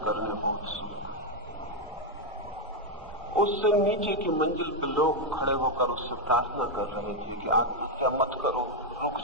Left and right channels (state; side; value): normal; both; correlation 0.02